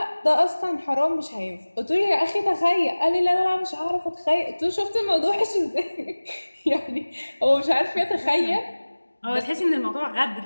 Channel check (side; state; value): both; inverted; correlation -1.00